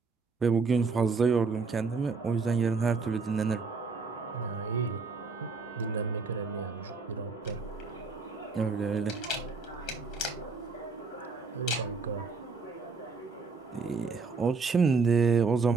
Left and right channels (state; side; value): quieter; left; 4.4 dB